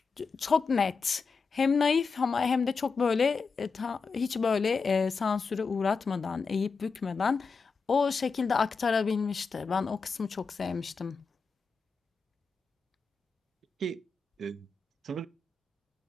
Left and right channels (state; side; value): quieter; right; 4.8 dB